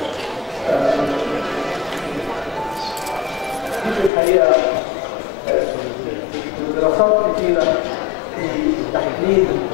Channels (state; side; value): drops out; right; at 4.1 s